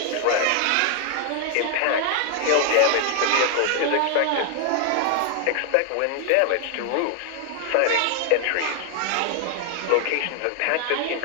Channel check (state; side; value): different; both; correlation 0.00